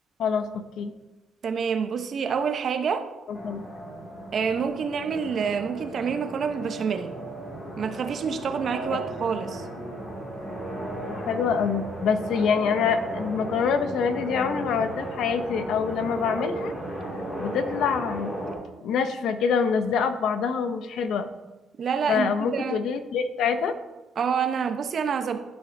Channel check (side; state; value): both; normal; correlation 0.63